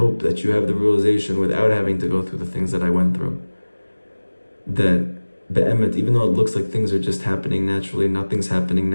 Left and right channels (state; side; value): inverted; both; correlation -1.00